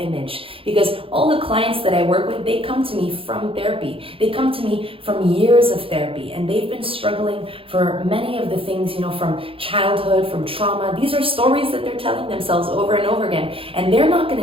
Because all the clients that I work with, they come to me from therapy. They come to me from years of therapy, and they've been struggling for many of the things, you know, from childhood, from trauma. These are stories that they're telling themselves over and over again, and they're not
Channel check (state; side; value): late; left; 0.27 ms